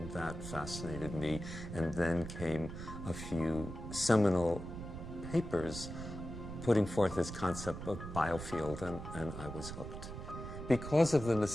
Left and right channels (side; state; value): right; noise; rumble, 9 dB below the sound